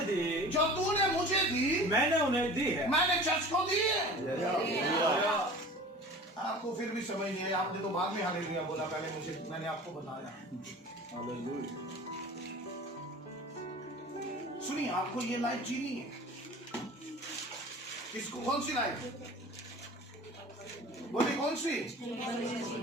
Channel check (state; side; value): normal; both; correlation 0.41